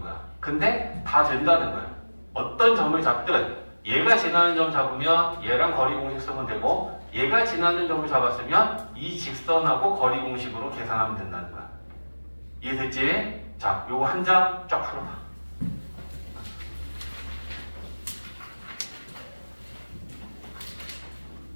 근데 다 된다는 거야 어떤 점을 잡든 얘가 지나는 점 잡으면 얘랑 거리 공식 쓰면 되고 얘가 지나는 점을 잡았으면 이 직선하고 거리 공식으로 계산하면 된다는 거야 이해됐지? 자 요거 한 장 쫙 풀어봐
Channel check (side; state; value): both; inverted; correlation -1.00